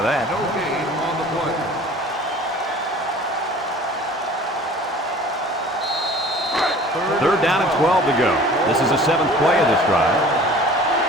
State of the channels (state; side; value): normal; both; correlation 0.46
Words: that. No gain on the play. 3rd down and 12 to go. This is the 7th play of this drive.